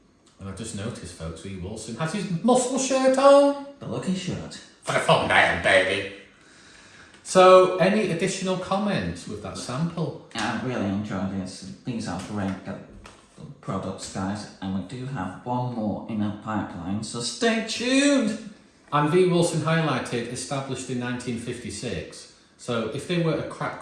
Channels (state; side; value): identical; both; correlation 1.00